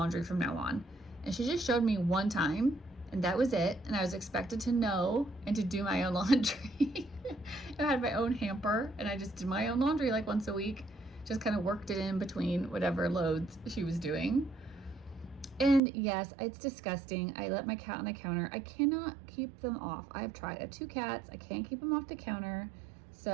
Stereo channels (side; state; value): left; drops out; at 15.8 s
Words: from now on. And she just showed me one time, and that was it. And I was expected to know and to do my own laundry. I had my own hamper, and I just did my own laundry like once a week. Just kind of worked it in between whatever loads she was doing. And yes, it's disgusting. I let my cat on the counter. I cannot keep them off. I've tried. I have 2 cats. I can't keep them off the counter.